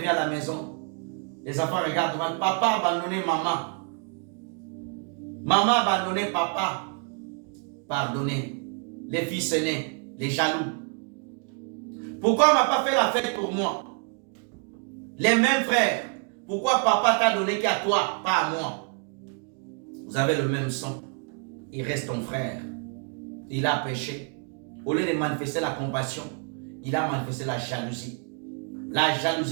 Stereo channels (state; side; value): quieter; left; 38.6 dB